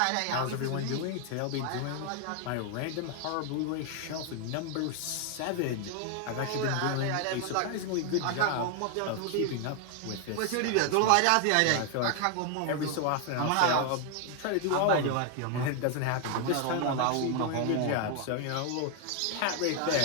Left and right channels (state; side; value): different; both; correlation 0.00